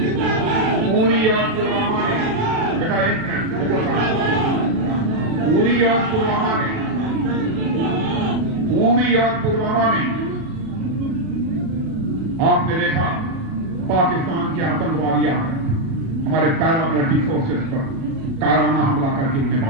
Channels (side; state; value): left; late; 37 ms